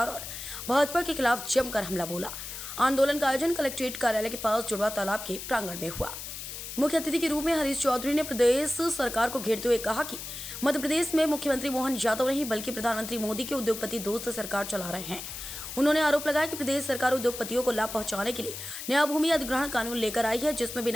और भाजपा के खिलाफ जमकर हमला बोला। आंदोलन का आयोजन कलेक्ट्रेट कार्यालय के पास जुड़वा तालाब के प्रांगण में हुआ। मुख्य अतिथि के रूप में हरीश चौधरी ने प्रदेश सरकार को घेरते हुए कहा कि मध्य प्रदेश में मुख्यमंत्री मोहन यादव नहीं बल्कि प्रधानमंत्री मोदी के उद्योगपति दोस्त सरकार चला रहे हैं। उन्होंने आरोप लगाया कि प्रदेश सरकार उद्योगपतियों को लाभ पहुंचाने के लिए नया भूमि अधिग्रहण कानून लेकर आई है, जिसमें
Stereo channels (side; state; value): left; noise; hiss, 9 dB below the sound